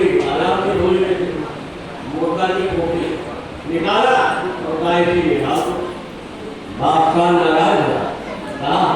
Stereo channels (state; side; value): identical; both; correlation 1.00